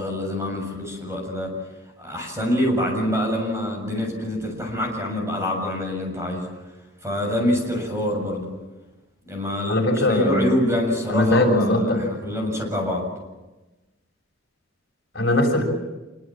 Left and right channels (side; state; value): both; normal; correlation 0.42